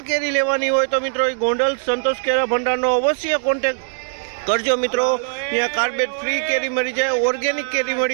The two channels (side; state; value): left; silent; digital silence